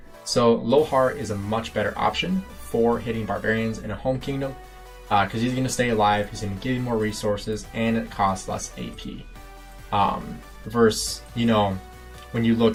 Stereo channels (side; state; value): both; identical; correlation 1.00